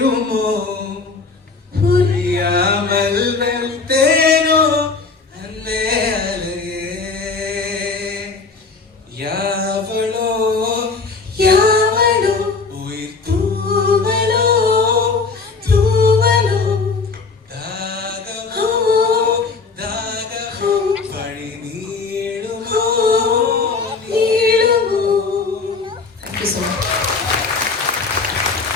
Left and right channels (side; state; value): right; quieter; 4.4 dB